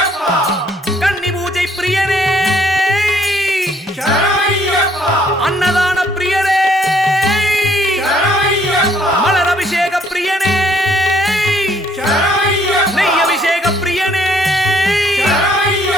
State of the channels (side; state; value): both; normal; correlation 0.65